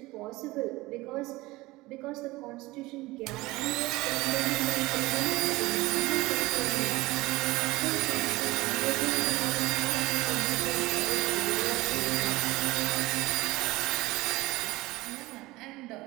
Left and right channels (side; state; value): left; quieter; 20.1 dB